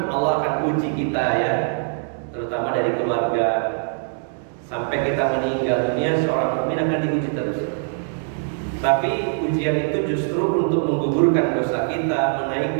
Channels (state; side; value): silent; left; digital silence